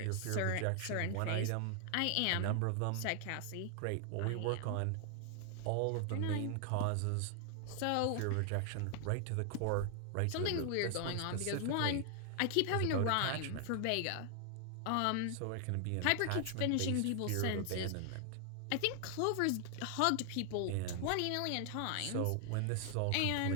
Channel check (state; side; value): different; both; correlation 0.00